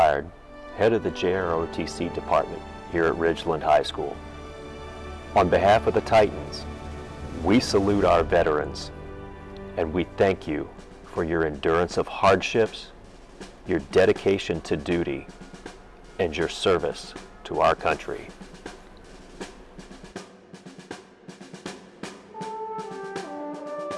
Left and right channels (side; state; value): both; identical; correlation 1.00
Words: head of the JROTC department here at Ridgeland High School. On behalf of the Titans, we salute our veterans, and we thank you for your endurance of hardships, your dedication to duty, and your service to our country.